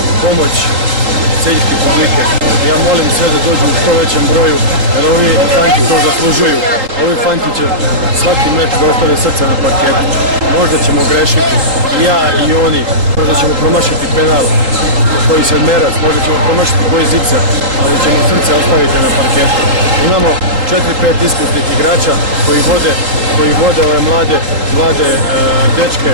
pomoć celjske publike. Ja molim sve da dođu u što većem broju, jer ovi fanti to zaslužuju. Ovi fanti će svaki meč da ostave srce na parketu. Možda ćemo grešiti, i ja i oni, možda ćemo promašiti penal, koji se merac, možda ćemo promašiti koji zicer, ali ćemo srce ostaviti na parketu. Imamo 4-5 iskusnih igrača koji vode ove mlade dečke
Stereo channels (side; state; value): left; late; 3.8 ms